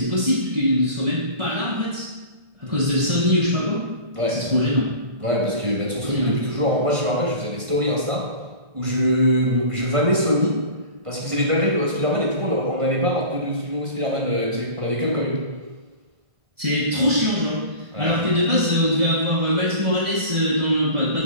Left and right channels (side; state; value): left; late; 1.5 ms